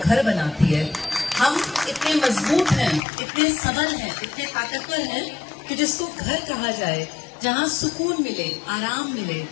बनाती है। हम इतने मजबूत हैं, इतने सबल हैं, इतने ताकतवर हैं कि जिसको घर कहा जाए, जहाँ सुकून मिले, आराम मिले,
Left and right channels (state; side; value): drops out; right; at 3.0 s